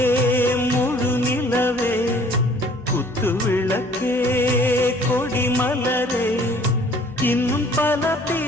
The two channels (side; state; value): both; normal; correlation 0.55